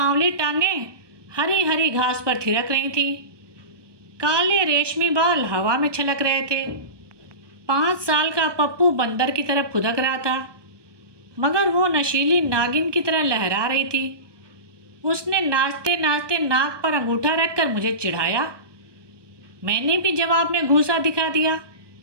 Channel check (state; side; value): late; left; 1.2 ms